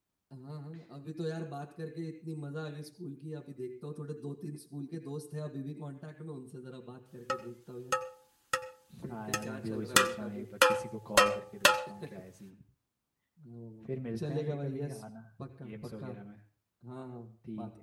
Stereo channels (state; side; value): identical; both; correlation 1.00